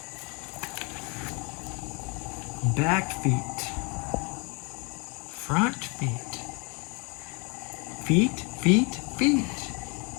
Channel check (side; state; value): right; quieter; 31.1 dB